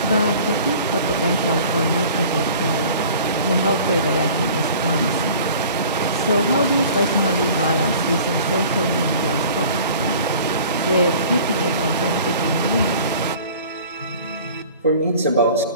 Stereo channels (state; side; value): inverted; both; correlation -0.46